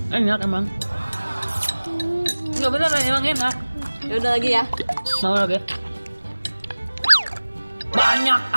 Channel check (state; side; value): inverted; both; correlation -1.00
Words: Enak emang. Enggak bener emang enak. Ya udah lagi ya. Mau lagi? Banyak